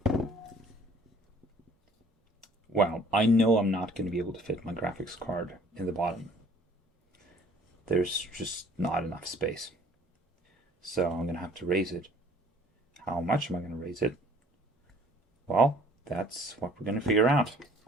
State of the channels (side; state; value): both; normal; correlation 0.55